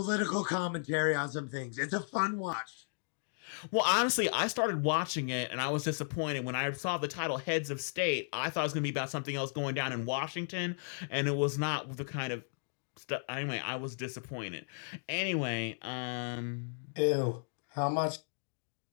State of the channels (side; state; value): right; silent; digital silence